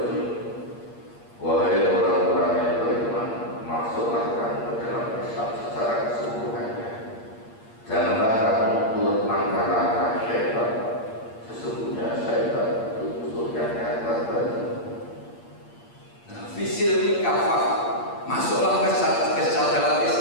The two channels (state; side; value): late; right; 8.6 ms